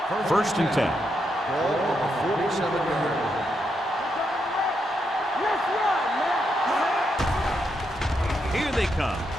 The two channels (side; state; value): both; normal; correlation 0.81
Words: First and 10. Ball on the 47-yard line. Here they come.